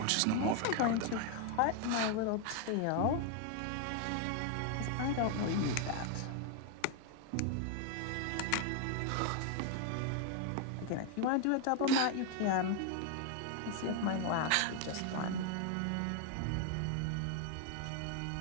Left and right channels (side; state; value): both; different; correlation 0.01